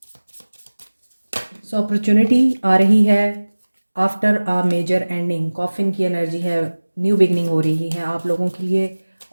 सो अपॉर्चुनिटी आ रही है after a major ending. Coffin की एनर्जी है, न्यू बिगनिंग हो रही है आप लोगों के लिए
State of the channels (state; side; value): inverted; both; correlation -1.00